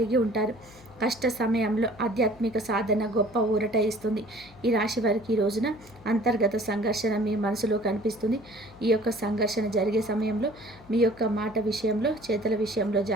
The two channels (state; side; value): noise; left; hum, 23 dB below the sound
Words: ఉంటారు. కష్ట సమయంలో ఆధ్యాత్మిక సాధన గొప్ప ఊరట ఇస్తుంది. ఈ రాశి వారికి ఈ రోజున అంతర్గత సంఘర్షణ మీ మనసులో కనిపిస్తుంది. ఈ యొక్క సంఘర్షణ జరిగే సమయంలో మీ యొక్క మాట విషయంలో, చేతుల విషయంలో